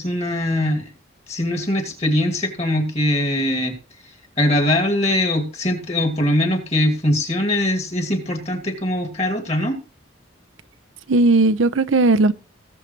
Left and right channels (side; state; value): both; normal; correlation 0.50